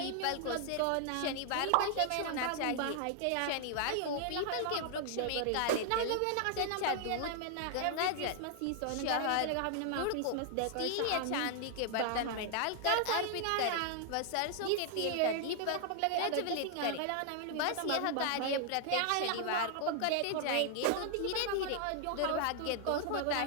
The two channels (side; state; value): both; different; correlation 0.00